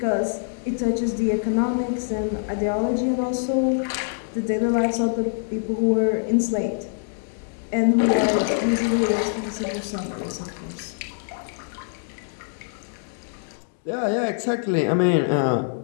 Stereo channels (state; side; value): silent; right; digital silence